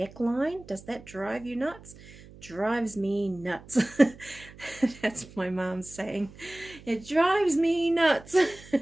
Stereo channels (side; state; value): right; noise; hum, 20 dB below the sound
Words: does that drive you nuts? Drives me nuts. That's my mom's saying. It drives me nuts.